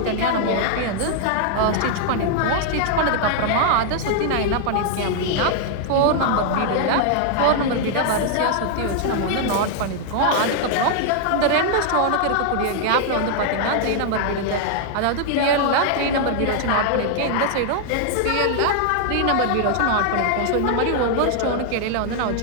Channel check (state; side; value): different; both; correlation 0.00